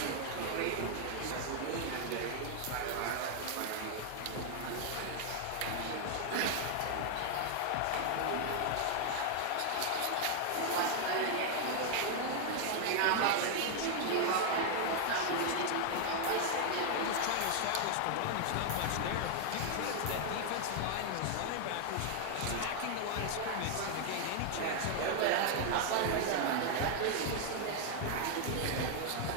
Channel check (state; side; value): different; both; correlation 0.00